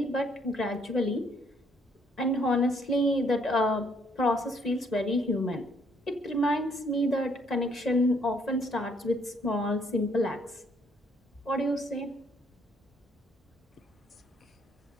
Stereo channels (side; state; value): both; normal; correlation 0.67